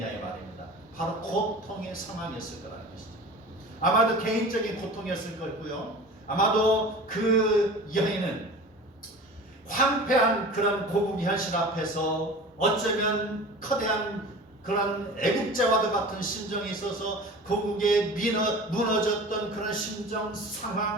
이 말입니다. 바로 고통의 상황이었을 거라는 것이죠. 아마도 개인적인 고통이었을 거고요. 아마도 그 여인은 황폐한 그런 고국 현실 앞에서 어쩌면 커다란 그런 애국자와도 같은 심정이 있어서 고국에 무너졌던 그런 심정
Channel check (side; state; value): both; normal; correlation 0.38